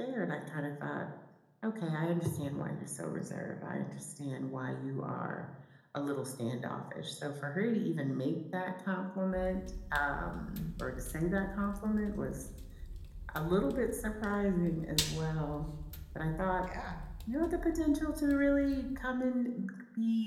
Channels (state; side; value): identical; both; correlation 1.00